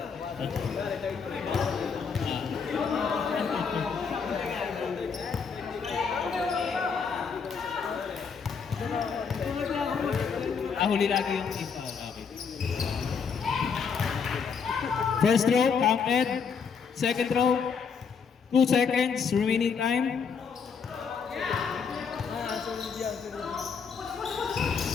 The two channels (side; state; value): right; quieter; 6.1 dB